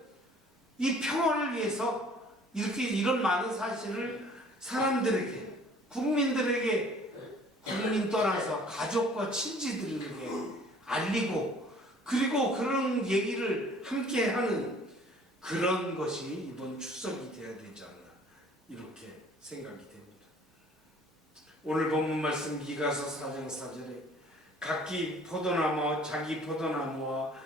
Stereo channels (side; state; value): both; normal; correlation 0.53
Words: 이 평화를 위해서 이렇게 이런 많은 사실을 사람들에게 국민들에게 국민 떠나서 가족과 친지들에게 알리고 그리고 그런 얘기를 함께 하는 그런 것이 이번 추석이 되어야 되지 않나 이렇게 생각이 됩니다. 오늘 본문 말씀 미가서 4장 4절에 각기 포도나무와 자기 포도나무와